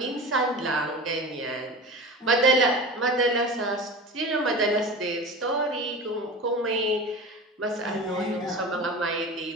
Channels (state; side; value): normal; both; correlation 0.32